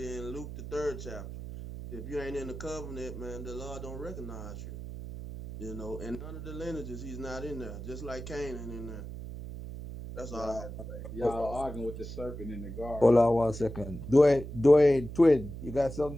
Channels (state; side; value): noise; right; hum, 9 dB below the sound